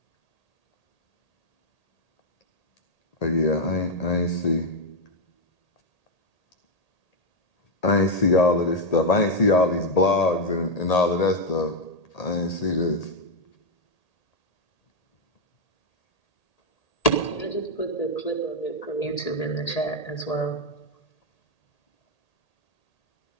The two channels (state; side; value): late; right; 1.8 ms